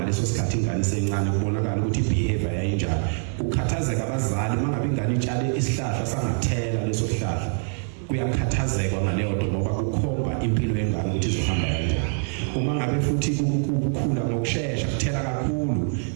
sikhathi ingane sencane kubonakala ukuthi ibehavior yayinjani. Ukhathazeka abazali mangabe ingane itshale isihlahla sangathela leso sihlahla, kuyakhathazeka ngaleyo nto ngoba kukhomba impilo yengane ukuthi izohamba kanjani. Uma ngabe futhi ukukhula ngokusheshsha kuthela kakhulu,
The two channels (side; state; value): left; silent; 57 dB below the other